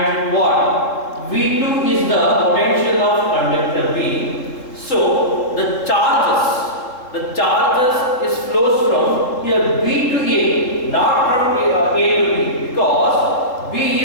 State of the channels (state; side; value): late; right; 3.8 ms